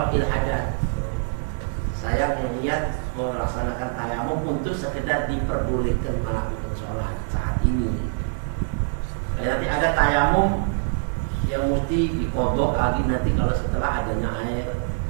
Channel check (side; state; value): left; silent; 62 dB below the other